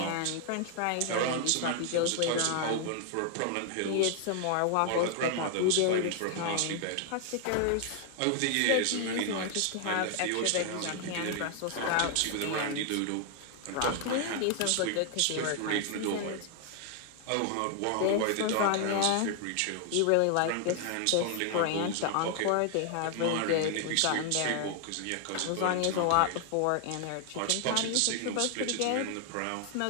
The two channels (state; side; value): different; both; correlation 0.00